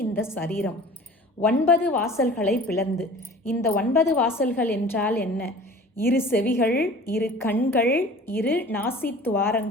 இந்த சரீரம் 9 வாசல்களை பிளந்து. இந்த 9 வாசல்கள் என்றால் என்ன? 2 செவிகள், 2 கண்கள், 2 நாசி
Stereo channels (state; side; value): normal; both; correlation 0.43